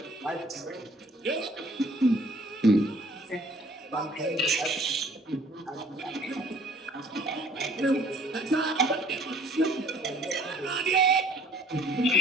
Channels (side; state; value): both; normal; correlation 0.56